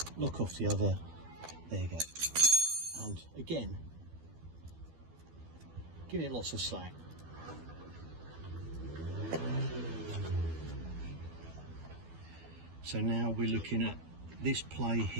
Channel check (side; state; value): left; late; 12 ms